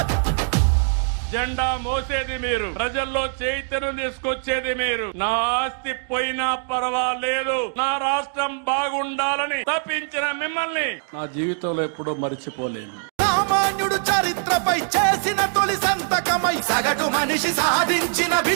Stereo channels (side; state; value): left; silent; 64 dB below the other